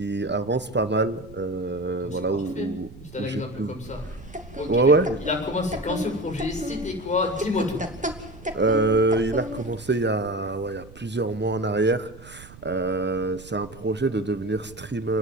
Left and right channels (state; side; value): noise; right; rumble, 18 dB below the sound